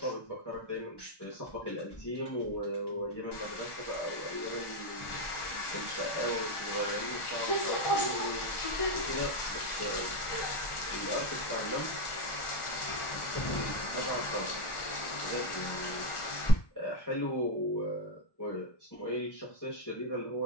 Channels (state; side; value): late; right; 1.4 ms